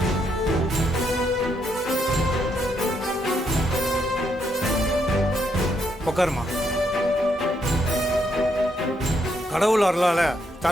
உட்காருமா. கடவுள் அருளால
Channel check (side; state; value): both; normal; correlation 0.76